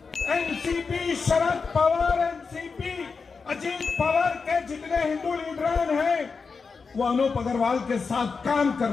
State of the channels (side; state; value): right; quieter; 4.9 dB